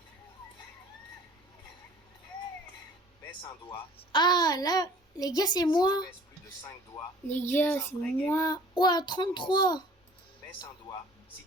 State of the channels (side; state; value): both; normal; correlation 0.50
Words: Baisse un doigt. Ah, là, les gars, c'est moi. Si tu baisses plus de 5 doigts, Les gars, c'est moi. Ouah, 33. baisse un doigt si